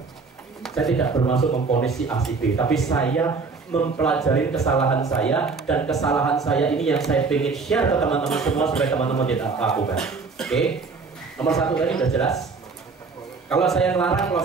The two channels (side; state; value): left; quieter; 4.6 dB